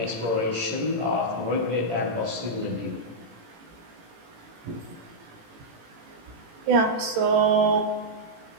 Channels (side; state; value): left; late; 18 ms